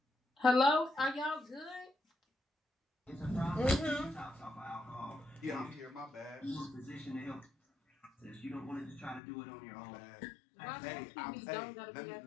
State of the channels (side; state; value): right; drops out; at 9.2 s